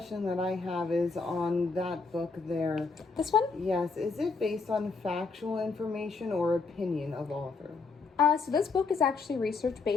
that I have is on that book there. This one? Yes. Is it based on factual information or opinion of author? So this book is actually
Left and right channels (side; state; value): right; quieter; 4.4 dB